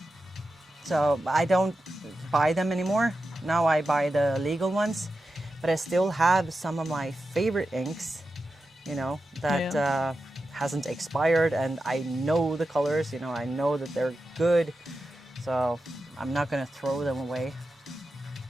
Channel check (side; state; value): both; normal; correlation 0.91